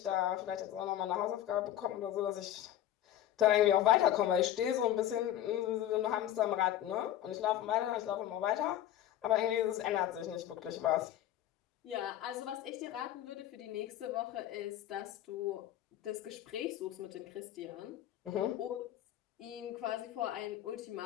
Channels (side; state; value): right; quieter; 12.2 dB